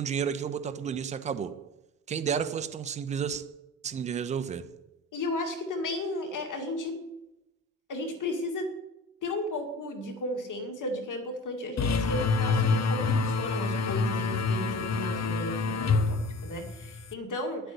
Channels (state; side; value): normal; both; correlation 0.39